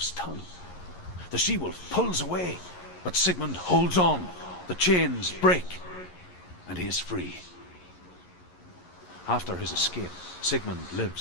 tongue. The she-wolf pulls away, but Sigmund holds on. The chains break, and he is free. After his escape, Sigmund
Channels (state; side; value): late; right; 11 ms